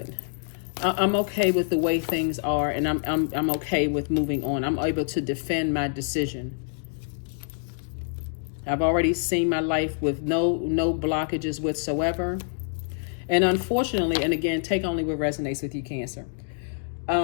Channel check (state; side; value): silent; right; digital silence